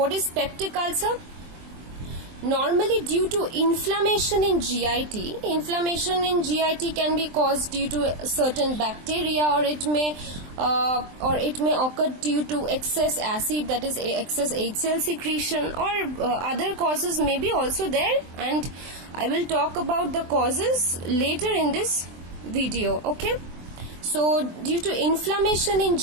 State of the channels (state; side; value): late; left; 23 ms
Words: is peptic ulcer? Normally due to inflammation in GIT. Inflammation in GIT can be caused due to certain bacteria, or it may occur due to excess acid, that is excess HCl secretion, or other causes may be also there, and I will talk about the causes later in this video. Okay, so due to inflammation in